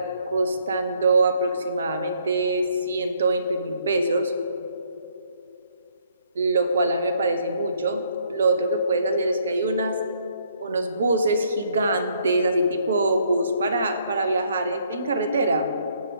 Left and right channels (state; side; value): inverted; both; correlation -0.68